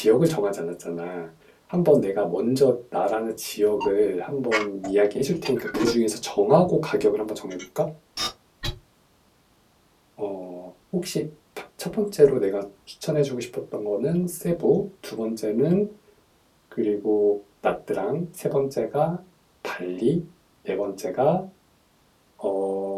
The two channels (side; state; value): both; identical; correlation 1.00